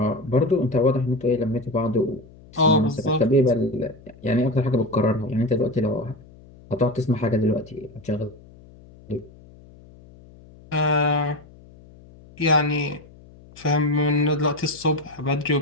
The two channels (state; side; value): noise; left; hum, 23 dB below the sound